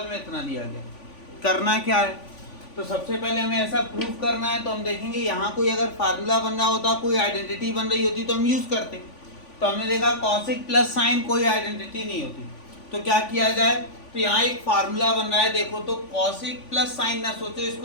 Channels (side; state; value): right; late; 3.5 ms